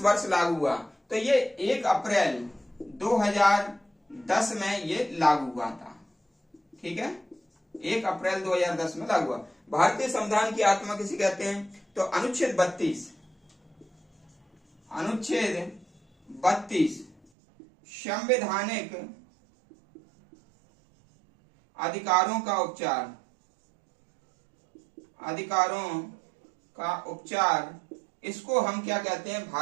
वर्ष लागू हुआ? तो ये 1 अप्रैल 2010 में ये लागू हुआ था। ठीक है, 1 अप्रैल 2010 में लागू हुआ। भारतीय संविधान की आत्मा किसे कहते हैं? तो अनुच्छेद 32 संवैधानिक अधिकारों का उपचार, इसको हम क्या कहते हैं?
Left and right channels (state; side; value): drops out; left; at 17.2 s